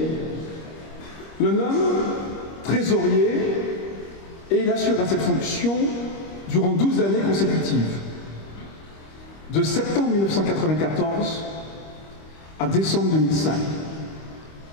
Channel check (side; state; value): right; late; 25 ms